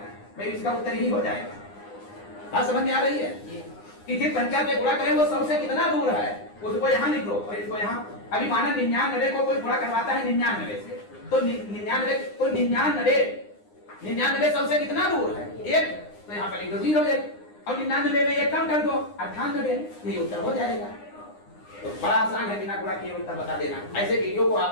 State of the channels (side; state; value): right; late; 9.8 ms